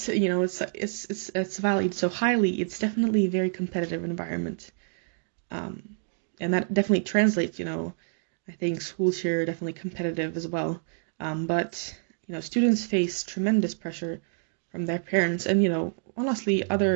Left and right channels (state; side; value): silent; left; digital silence